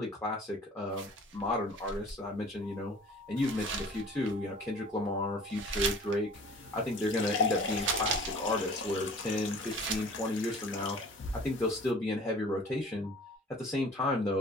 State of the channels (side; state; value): both; normal; correlation 0.46